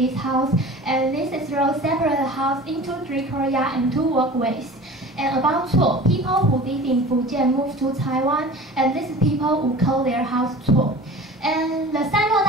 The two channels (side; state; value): both; normal; correlation 0.39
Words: house, and this is road separate the house into 3 Korea and 2 walkways. And about Cuo, people who live in Fujian moved to Taiwan, and these people who call their house Cuo. And the Sanluo